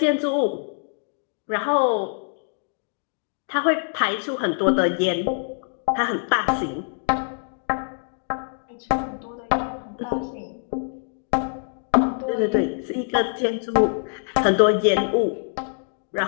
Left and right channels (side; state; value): right; silent; 62 dB below the other